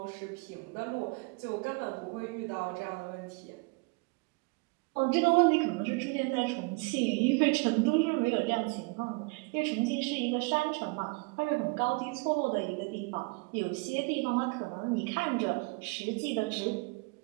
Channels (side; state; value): left; quieter; 29.5 dB